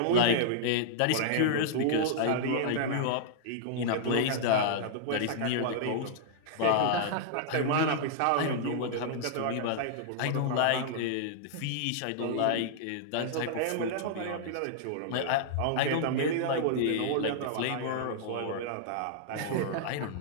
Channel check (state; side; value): different; both; correlation -0.01